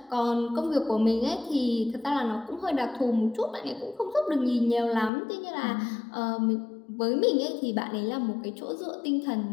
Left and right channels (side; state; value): right; drops out; at 5.1 s